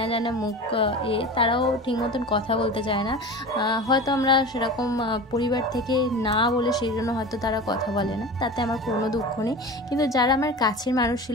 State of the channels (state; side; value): normal; both; correlation 0.33